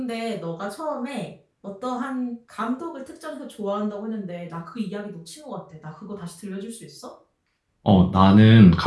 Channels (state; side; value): identical; both; correlation 1.00